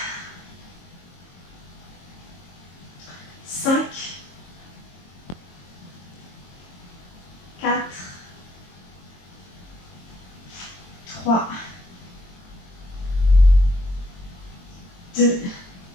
5, 3, 2,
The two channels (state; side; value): late; right; 22 ms